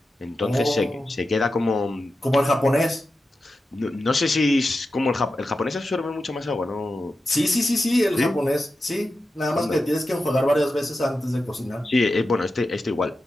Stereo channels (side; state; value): both; normal; correlation 0.91